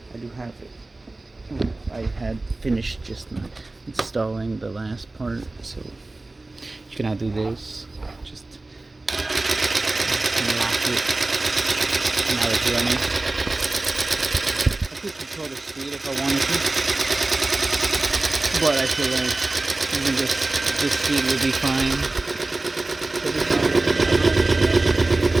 I do have it. I had finished just installing the last part, so you can now do this. Just lock it. Now it's running. I could control the speed if I wanted to, but I feel like even this speed will be fine.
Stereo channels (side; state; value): left; quieter; 3.0 dB